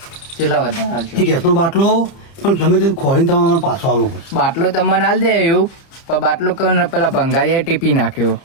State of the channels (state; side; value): late; right; 30 ms